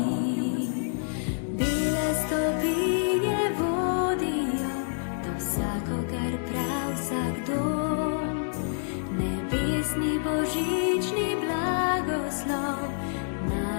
Bele stopinje vodijo do vsakogar prav vsak dom, nebesni božični blagoslov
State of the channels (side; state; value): right; silent; 60 dB below the other